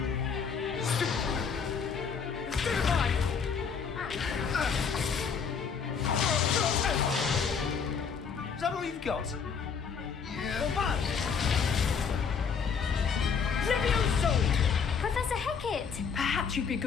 Is that all you've got? Yeah. Levioso! Professor Hecat! Perhaps you'd be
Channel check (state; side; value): quieter; right; 6.2 dB